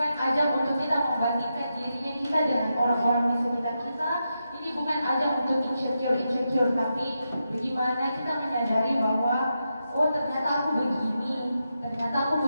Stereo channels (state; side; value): inverted; both; correlation -0.87